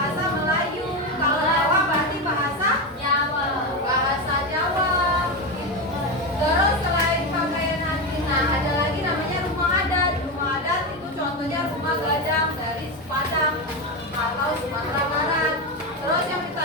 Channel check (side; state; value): both; normal; correlation 0.15